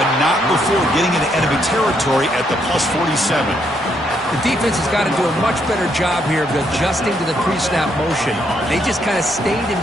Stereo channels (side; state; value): both; normal; correlation 0.74